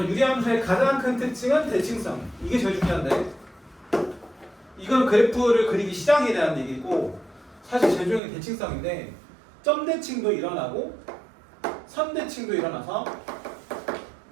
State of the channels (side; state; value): left; drops out; at 8.2 s